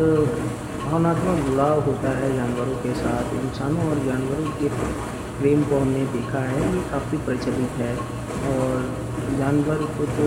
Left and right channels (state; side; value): identical; both; correlation 1.00